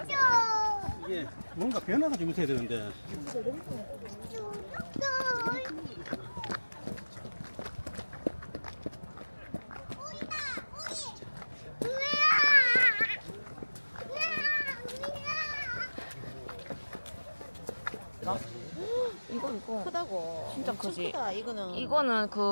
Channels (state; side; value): inverted; both; correlation -1.00